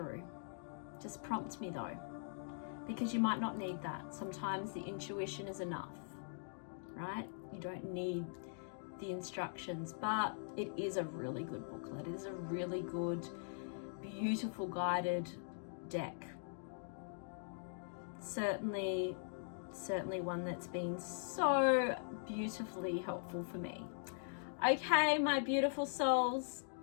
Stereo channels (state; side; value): silent; right; digital silence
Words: Just prompt me though, because you might not need that. Sometimes the intuition is enough, right? You don't need the instructions, but it is a really good booklet. It is a really good, beautiful guided deck. Certainly one that's been so beautifully helpful for me. Okay, my beautiful souls,